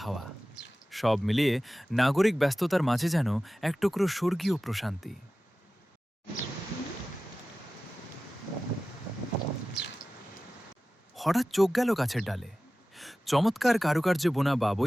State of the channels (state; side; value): normal; both; correlation 0.96